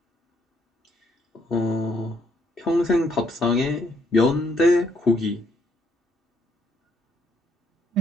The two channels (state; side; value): normal; both; correlation 0.71